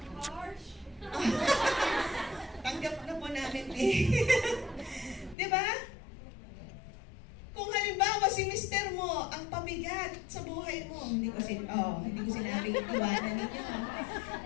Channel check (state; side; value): drops out; right; at 5.4 s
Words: Tanggap na po namin eh. Diba? Kung halimbawa si mister mo ang pabigat sa buhay mo, hindi ko sinabing iwanan ninyo.